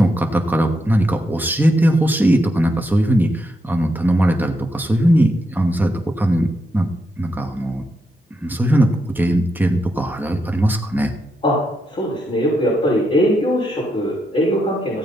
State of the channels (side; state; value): both; normal; correlation 0.82